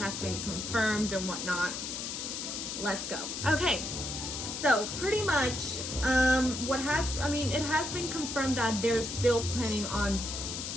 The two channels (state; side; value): noise; left; hiss, 5 dB below the sound